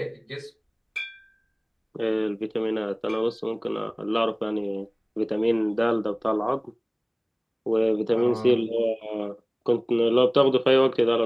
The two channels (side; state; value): both; identical; correlation 1.00